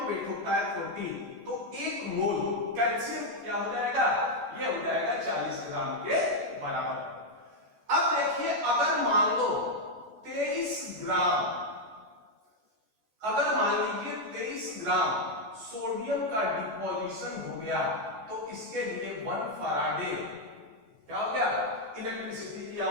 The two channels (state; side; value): late; left; 14 ms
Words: वेट होता है 40, तो एक मोल कैल्शियम क्या हो जाएगा, ये हो जाएगा 40 ग्राम के बराबर। अब देखिए अगर मान लो 23 ग्राम, अगर मान लीजिए 23 ग्राम सोडियम का डिपोजिशन हो गया तो इसके लिए 1 फराडे क्या हो गया, इलेक्ट्रिसिटी की